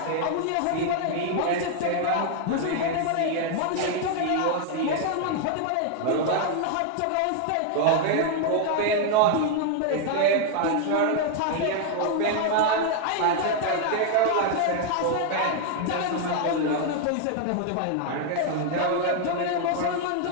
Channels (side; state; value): both; different; correlation 0.00